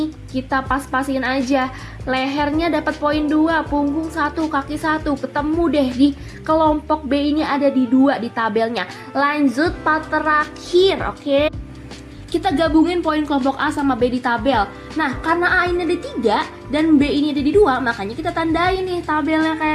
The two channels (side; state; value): both; identical; correlation 1.00